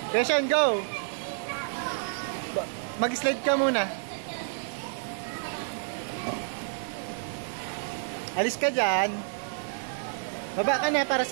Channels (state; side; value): silent; left; digital silence